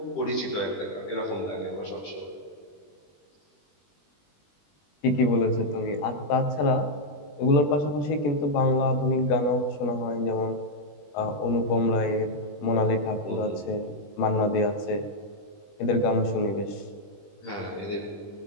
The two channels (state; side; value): late; right; 20 ms